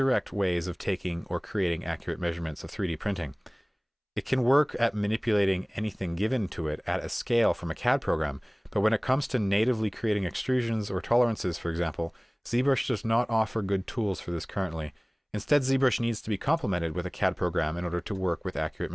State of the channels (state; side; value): identical; both; correlation 1.00